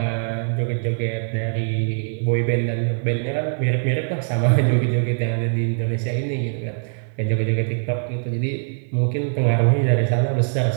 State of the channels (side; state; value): left; silent; 64 dB below the other